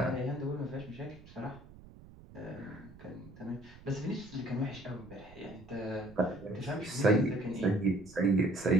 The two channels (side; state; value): right; noise; rumble, 20 dB below the sound